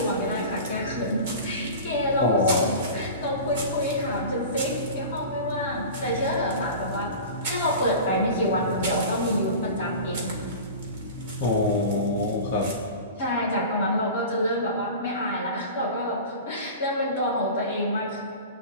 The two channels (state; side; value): inverted; both; correlation -0.34